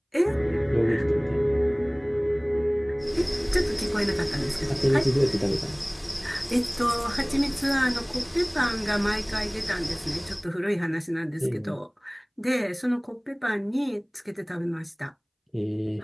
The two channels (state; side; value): identical; both; correlation 1.00